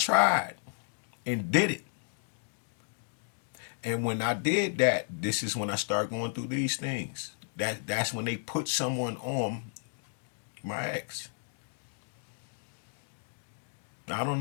and did it. And when I did that, this is when I start going through these things. That's when they put someone on my ex. I don't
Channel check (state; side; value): silent; right; digital silence